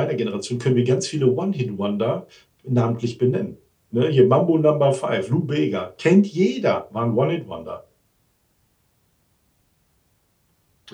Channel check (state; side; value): identical; both; correlation 1.00